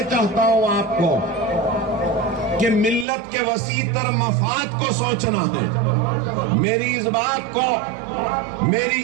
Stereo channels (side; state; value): left; drops out; at 3.1 s